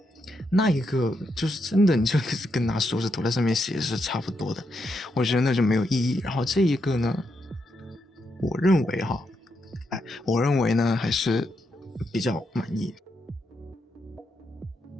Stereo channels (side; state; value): both; normal; correlation 0.81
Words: 那一个就是真的你就跟拿手指头在上面写是差不多的，我觉得那就没有意义。然后这一个呢，我认为呢还是比较满意。